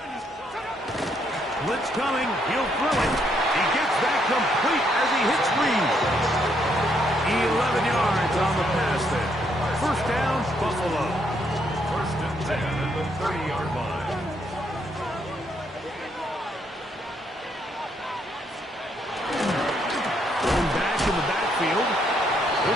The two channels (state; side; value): normal; both; correlation 0.73